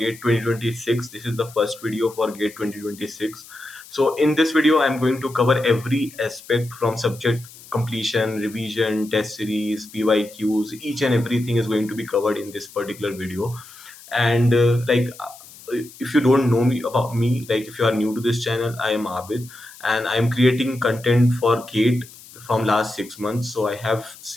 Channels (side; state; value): left; noise; hiss, 20 dB below the sound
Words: 2026. This is the first video for GATE 2026. So, in this video, I'm going to cover every aspect from subject completion, revision, test series, PYQs. Each and everything is going to be covered in this particular video. And if you don't know me about me, like if you are new to this channel, I am Abid, and I am creating content for GATE from last 6 months. So I have